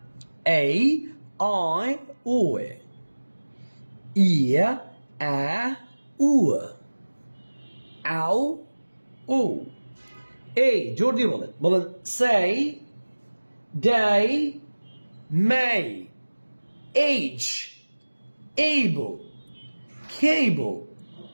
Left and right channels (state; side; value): inverted; both; correlation -1.00